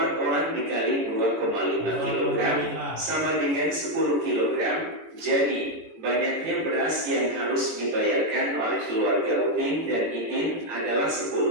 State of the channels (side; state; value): left; late; 18 ms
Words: orang dikali 2,5 kg sama dengan 10 kg. Jadi banyaknya beras yang harus dibayarkan oleh keluarga Upin dan Ipin adalah